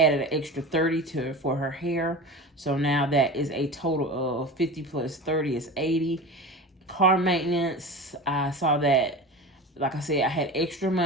an extra 30 for her hair. So now that is a total of 50 plus 30 is 80. Car maintenance, I saw that, like I said, I had extra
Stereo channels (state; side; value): normal; both; correlation 0.31